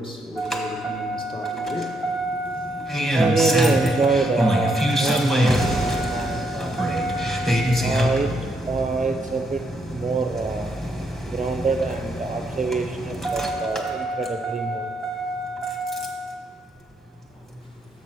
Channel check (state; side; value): normal; both; correlation 0.76